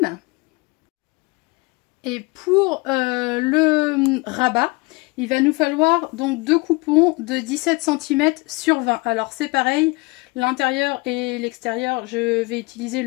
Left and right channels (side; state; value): right; quieter; 25.9 dB